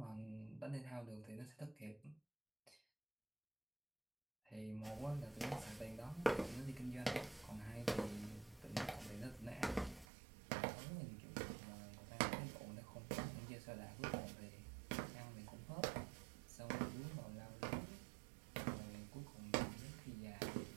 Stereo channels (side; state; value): left; drops out; at 10.1 s